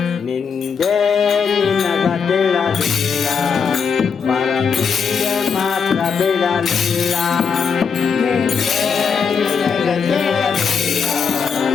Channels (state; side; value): quieter; right; 6.1 dB